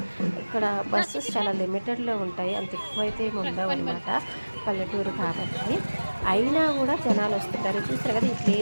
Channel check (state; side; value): inverted; both; correlation -1.00